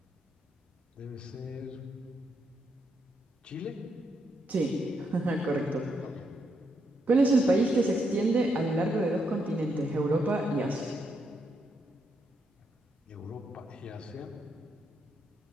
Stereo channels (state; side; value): normal; both; correlation 0.79